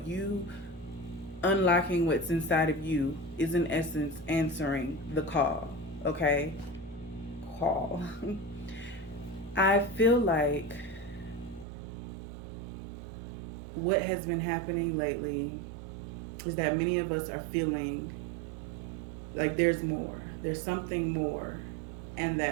unlocking what's inside of you is in essence answering the call. Okay? Call. I feel like what has been happening lately is that many of us are feeling like there's more. There's something more, and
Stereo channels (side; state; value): left; drops out; at 11.7 s